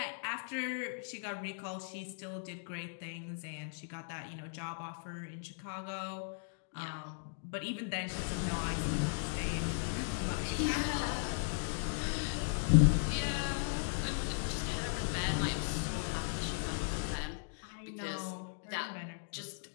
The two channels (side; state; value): right; silent; digital silence